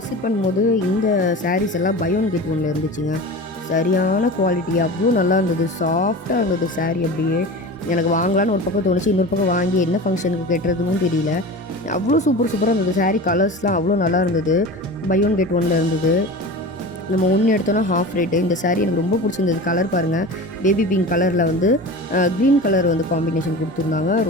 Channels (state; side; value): normal; both; correlation 0.32